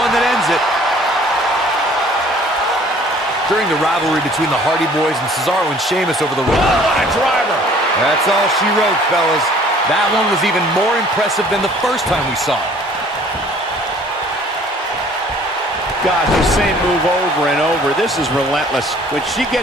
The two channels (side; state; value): both; normal; correlation 0.54